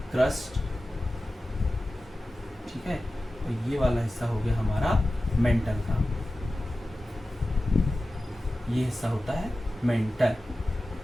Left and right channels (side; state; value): both; normal; correlation 0.95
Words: क्रस्ट, ठीक है, और ये वाला हिस्सा हो गया हमारा मेंटल का। ये हिस्सा होता है मेंटल,